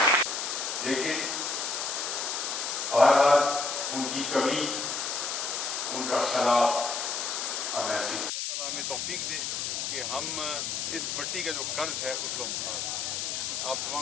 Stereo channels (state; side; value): noise; left; hiss, 2 dB below the sound